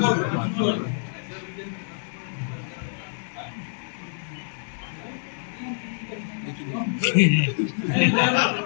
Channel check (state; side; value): silent; right; digital silence